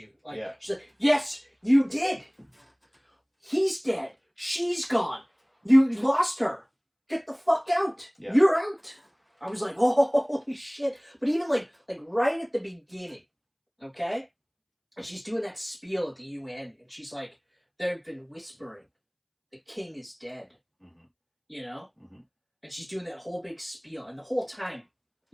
Like she's like, yes, you did. He's dead. She's gone. You lost her. Get the fuck out. Yeah. You're out. I was like, oh, holy shit. But even like right at the beginning, okay? And she's doing that spiel at the UN, and she's like, they've been whispering, the king is dead. Mm-hmm. You know? Mm-hmm. And she's doing that whole big spiel, and the whole time,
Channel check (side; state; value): both; identical; correlation 1.00